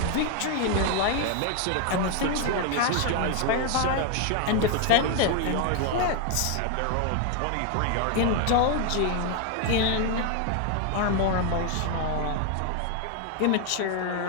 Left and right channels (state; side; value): different; both; correlation 0.01